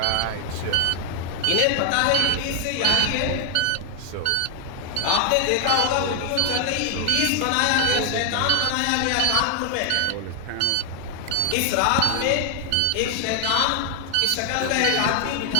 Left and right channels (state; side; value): different; both; correlation 0.00